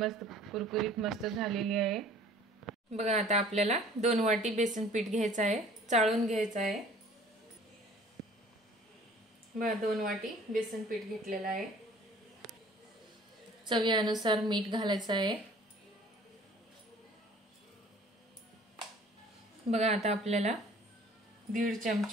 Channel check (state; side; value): normal; both; correlation 0.51